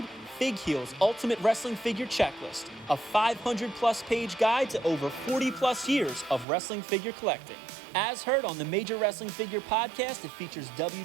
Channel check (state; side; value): drops out; left; at 6.5 s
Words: FigHeal's Ultimate Wrestling Figure Checklist, a 500-plus page guide to over 40-plus years of wrestling figure collecting. As heard on the Major Wrestling Figure podcast, it features